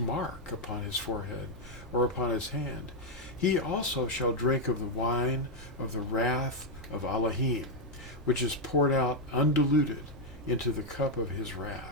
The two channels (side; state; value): left; noise; rumble, 22 dB below the sound